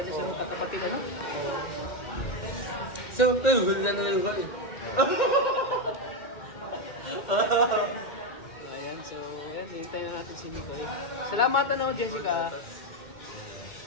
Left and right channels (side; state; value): right; late; 2.1 ms